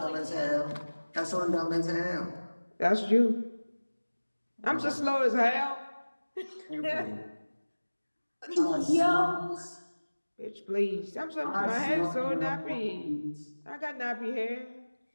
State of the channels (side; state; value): both; inverted; correlation -1.00